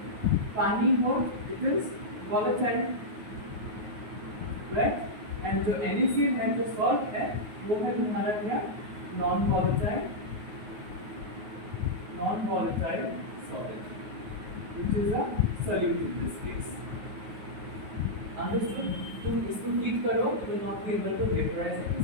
पानी हो, it is volatile, right? And जो NaCl है, जो salt है, वो है हमारा क्या? non-volatile solid, which is a solute in this case. Understood? तुम इसको हीट करो, you will not be able to vaporize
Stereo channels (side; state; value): left; late; 9.4 ms